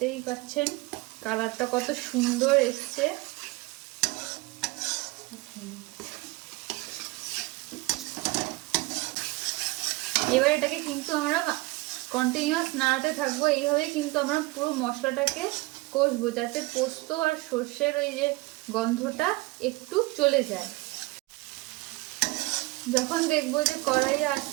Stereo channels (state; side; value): quieter; left; 22.3 dB